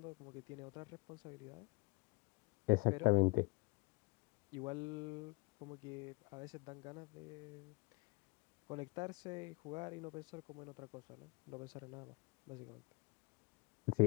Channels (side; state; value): right; quieter; 25.8 dB